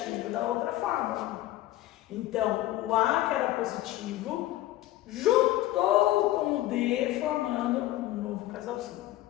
da outra fórmula. Então, o A, que era positivo, juntou com o D, formando um novo casalzinho.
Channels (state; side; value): quieter; right; 15.5 dB